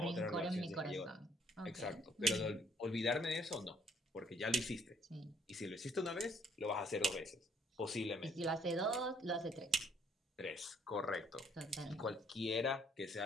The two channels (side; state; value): both; normal; correlation 0.64